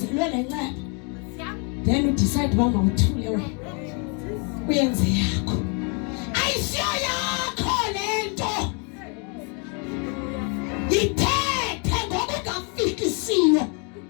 lenceba. Then you decide uba mawuthule wena. Uyenze yakho. Ayisiyo yakho lento. Ithethe ngokungafikisiyo.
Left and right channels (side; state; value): right; quieter; 36.2 dB